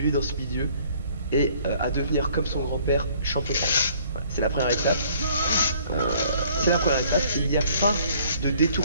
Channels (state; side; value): inverted; both; correlation -0.58